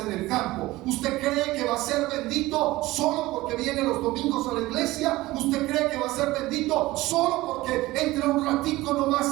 en el campo? ¿Usted cree que va a ser bendito solo porque viene los domingos a la iglesia? ¿Usted cree que va a ser bendito solo porque entra un ratico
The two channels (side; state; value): left; quieter; 18.5 dB